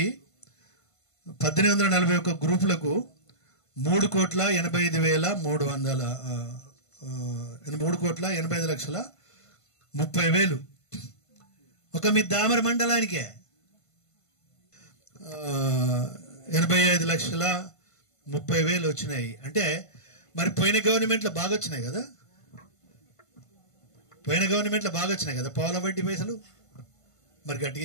1841 గ్రూపులకు 3,85,30,000 ఒక మీ దామర మండలానికే 85,30,000 వచ్చినాయి. అంటే మరి పోయిన గవర్నమెంట్లో బాగా వచ్చినాయి కదా. పౌల వడ్డీ పైసలు. మరి గట్టిగా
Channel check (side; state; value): right; late; 1.5 ms